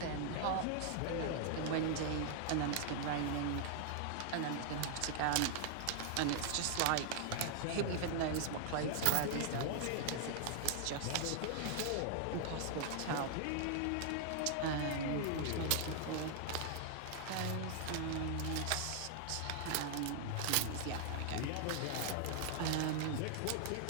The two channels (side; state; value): both; different; correlation -0.01